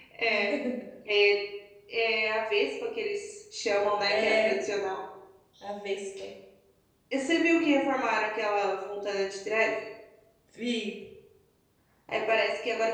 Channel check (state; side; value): identical; both; correlation 1.00